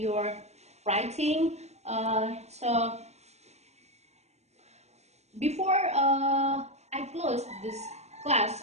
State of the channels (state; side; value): late; left; 0.32 ms